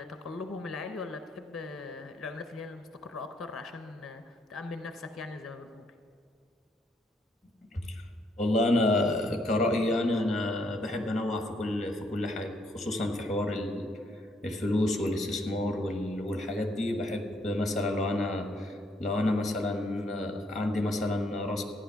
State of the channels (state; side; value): normal; both; correlation 0.71